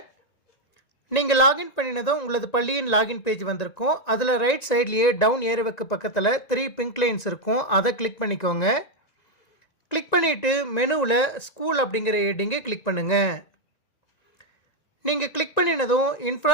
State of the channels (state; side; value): late; right; 1.9 ms